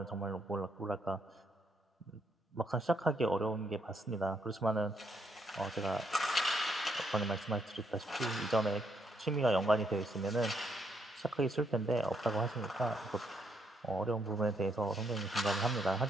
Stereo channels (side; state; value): both; normal; correlation 0.74